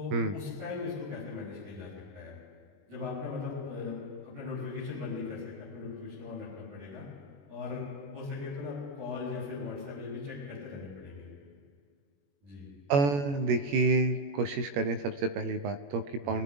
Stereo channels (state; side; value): late; left; 21 ms